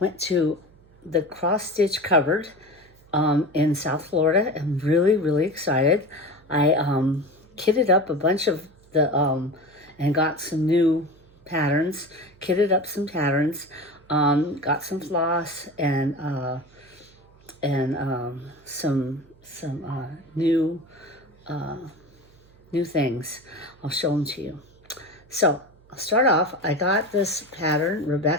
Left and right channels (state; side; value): noise; right; hum, 28 dB below the sound